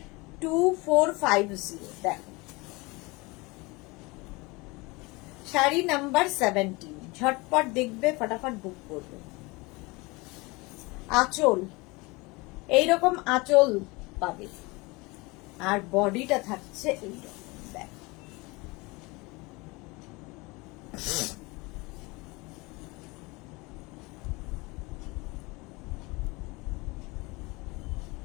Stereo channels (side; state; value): right; quieter; 24.9 dB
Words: 2450। দেখো শাড়ি নাম্বার 17, ঝটপট দেখবে, ফটাফট বুক করবে। আঁচল, এইরকম আঁচল পাবে, আর বডিটা থাকছে এইরকম। দেখো